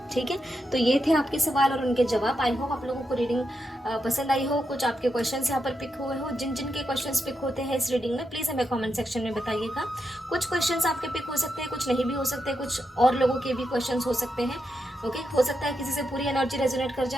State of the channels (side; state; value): both; normal; correlation 0.85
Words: ठीक है, तो ये थे आपके सवाल और उनके जवाब। आई होप आप लोगों को रीडिंग पसंद आई हो, कुछ आपके क्वेश्चंस यहाँ पर पिक हुए हो। जिन जिन के क्वेश्चंस पिक होते हैं इस रीडिंग में प्लीज़ हमें कमेंट सेक्शन में बताइएगा। कुछ क्वेश्चंस आपके पिक हो सकते हैं, कुछ नहीं भी हो सकते, कुछ और लोगों के भी क्वेश्चंस हो सकते हैं। ओके, हो सकता है किसी से पूरी एनर्जी रेजोनेट कर